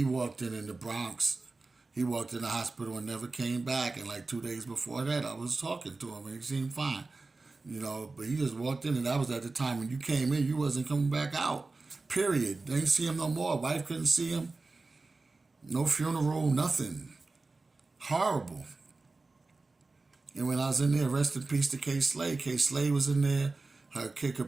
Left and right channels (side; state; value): left; quieter; 3.6 dB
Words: walked in the Bronx. He walked in the hospital and never came back. And like 2 days before that, I was talking to him and he seemed fine, but he just walked in and that was at the time when you came in, you wasn't coming back out, period. They didn't see him no more. Wife couldn't see him. No funeral, nothing. Horrible. And when I was in there, rest in peace to K. Slay. K. Slay was in there. Her Kid